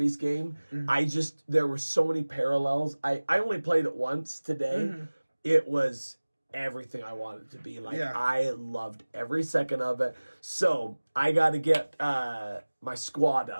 game. There were so many parallels. I only played it once today. It was everything I wanted it to be. I loved every second of it. So I got to get my squad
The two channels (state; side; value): inverted; both; correlation -1.00